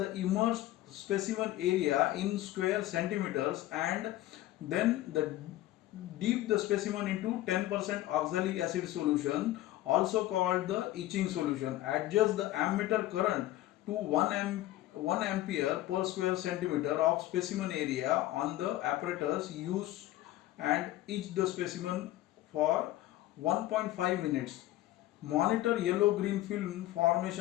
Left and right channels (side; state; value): right; quieter; 15.5 dB